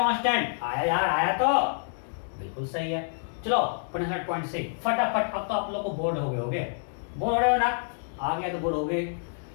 आया यार, आया तो बिल्कुल सही है। चलो 0.6 फटाफट। अब तो आप लोग को बोर्ड हो गए होगे, बोर्ड हो रहे हो ना, आ गया तो बोर्ड हो गए।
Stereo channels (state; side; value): silent; right; digital silence